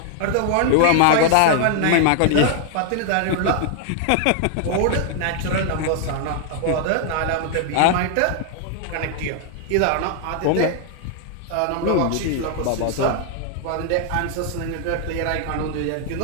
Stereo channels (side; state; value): both; different; correlation 0.00